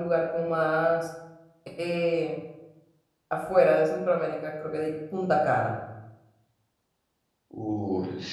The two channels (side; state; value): both; identical; correlation 1.00